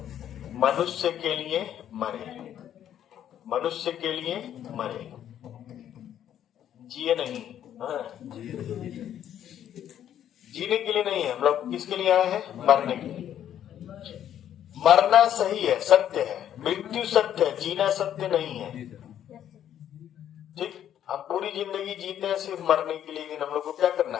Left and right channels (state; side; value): quieter; right; 10.4 dB